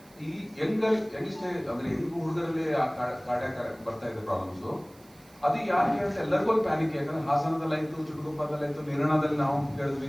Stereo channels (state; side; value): noise; right; hiss, 27 dB below the sound